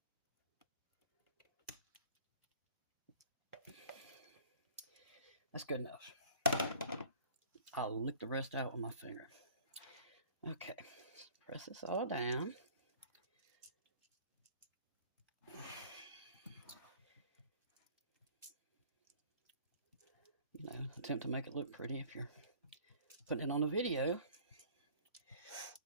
That's good enough. I'll lick the rest out with my finger. Okay, press this all down. Attempt to make it look pretty if you're putting it on a video.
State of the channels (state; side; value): inverted; both; correlation -0.50